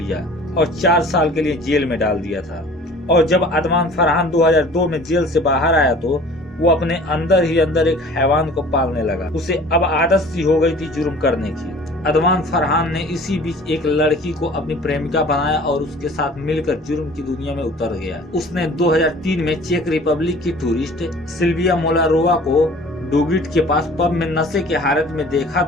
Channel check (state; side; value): normal; both; correlation 0.47